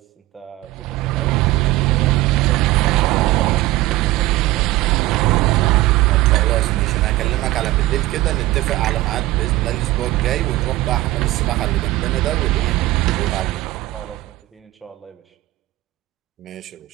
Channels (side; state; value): left; quieter; 18.0 dB